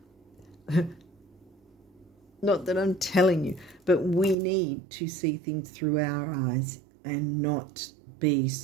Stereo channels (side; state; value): left; drops out; at 4.4 s